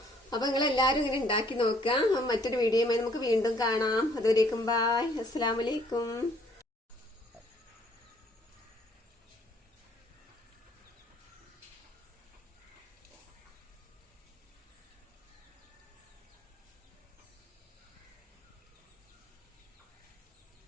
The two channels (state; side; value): normal; both; correlation 0.62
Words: അപ്പൊ നിങ്ങൾ എല്ലാരും ഇങ്ങനെ ഉണ്ടാക്കി നോക്കുക. മറ്റൊരു വീഡിയോയുമായി നമുക്ക് വീണ്ടും കാണാം. അതുവരേക്കും ബൈ. അസ്സലാമു അലൈക്കും.